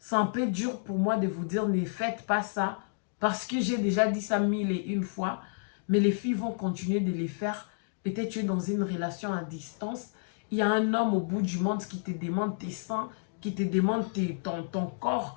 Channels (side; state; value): right; silent; digital silence